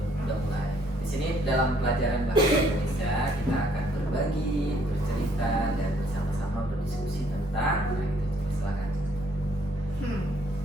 Di sini dalam pelajaran bahasa Indonesia kita akan berbagi, bercerita dan bersama-sama berdiskusi tentang. Nah, itu silakan.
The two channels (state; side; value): normal; both; correlation 0.65